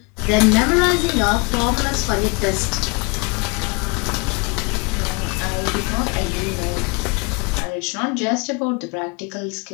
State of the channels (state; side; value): quieter; right; 29.6 dB